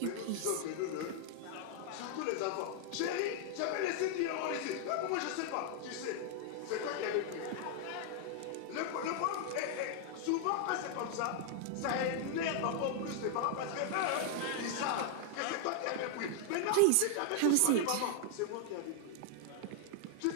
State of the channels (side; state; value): both; different; correlation 0.00